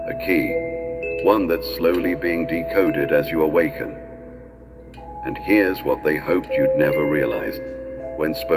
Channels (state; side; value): identical; both; correlation 1.00